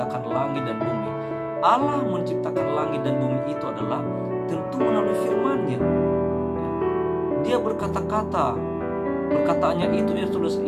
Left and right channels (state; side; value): identical; both; correlation 1.00